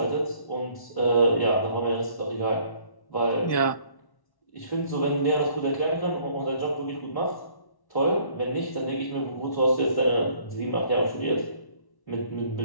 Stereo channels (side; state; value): right; late; 1.1 ms